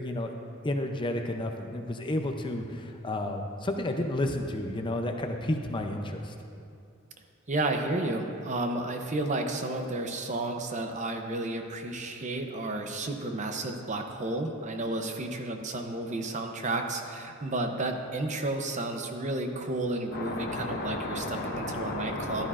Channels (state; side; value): normal; both; correlation 0.36